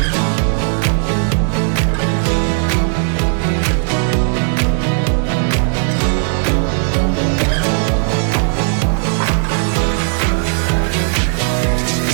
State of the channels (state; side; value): silent; left; 57 dB below the other